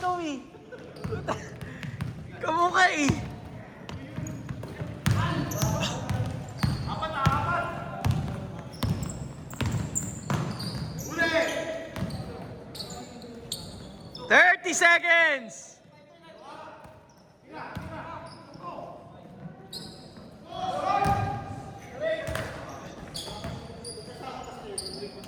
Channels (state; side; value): identical; both; correlation 1.00